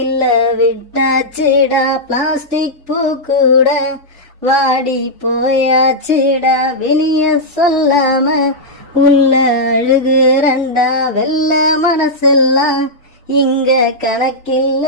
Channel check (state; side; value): normal; both; correlation -0.07